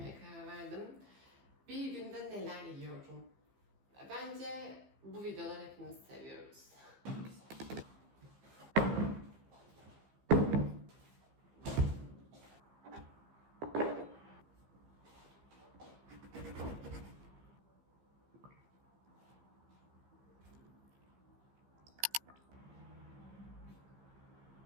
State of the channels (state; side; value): late; left; 15 ms